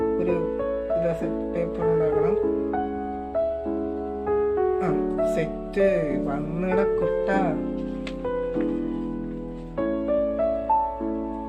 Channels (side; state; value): both; identical; correlation 1.00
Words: ഒരു പേപ്പർ ഉണ്ടാക്കണം. സെറ്റ് വന്നിട കുട്ട.